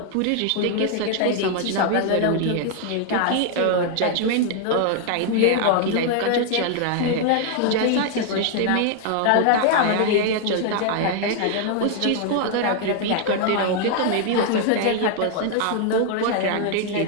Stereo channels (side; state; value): both; different; correlation 0.00